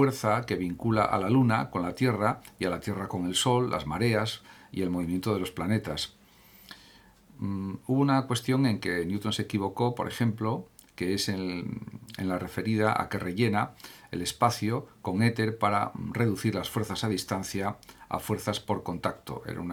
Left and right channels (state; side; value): identical; both; correlation 1.00